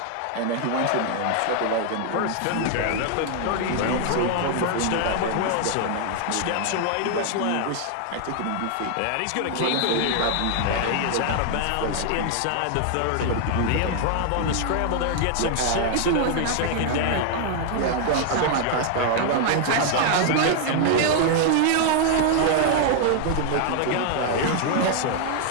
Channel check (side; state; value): both; different; correlation 0.00